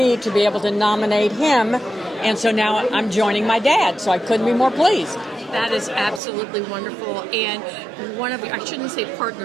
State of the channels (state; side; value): drops out; left; at 6.2 s